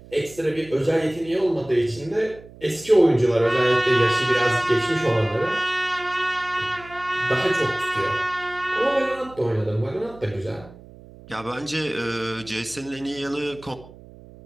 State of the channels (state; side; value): noise; right; hum, 20 dB below the sound